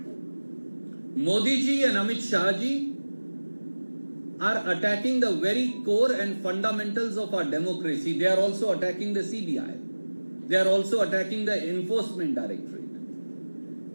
Modi ji and Amit Shah ji are attacking the very core and fundamentals of our democracy. They are also attacking the CBI. They are also attacking the Enforcement Directorate.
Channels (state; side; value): inverted; both; correlation -1.00